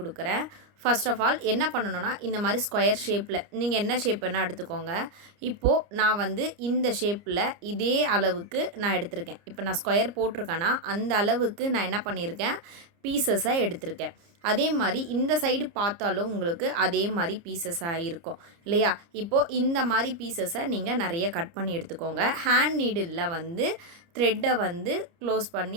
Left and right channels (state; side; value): late; left; 30 ms